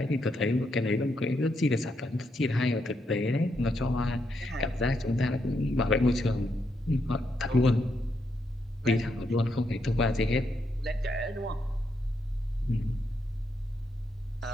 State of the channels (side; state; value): both; normal; correlation 0.80